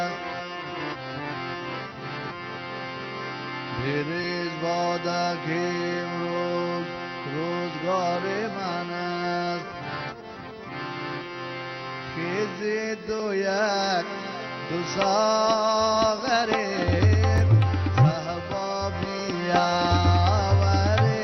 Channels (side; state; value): both; identical; correlation 1.00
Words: بریز باده که امروز روزگار من است خیزی دو یک دو ساغره